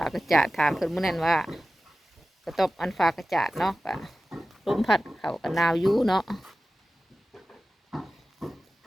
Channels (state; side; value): normal; both; correlation 0.95